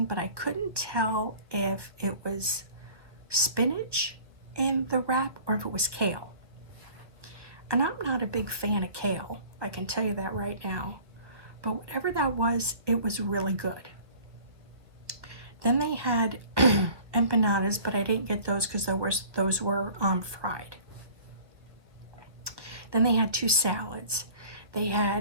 but I couldn't tell if it was spinach in the wrap or if it was kale. And I'm not a big fan of kale, I can tell you that right now. But whatever that was, it was really good. Then they had empanadas, but I didn't get those because those were fried. Then they had 2 salads. They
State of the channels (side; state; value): left; late; 1.4 ms